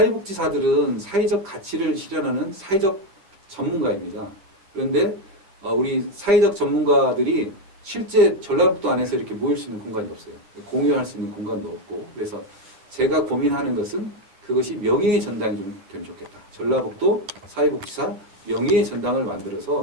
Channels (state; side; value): late; left; 10 ms